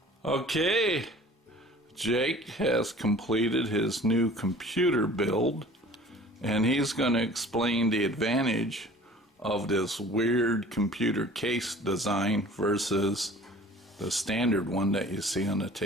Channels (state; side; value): normal; both; correlation 0.47